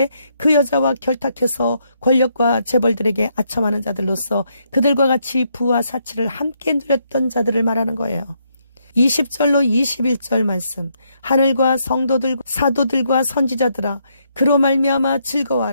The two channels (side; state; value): both; inverted; correlation -0.75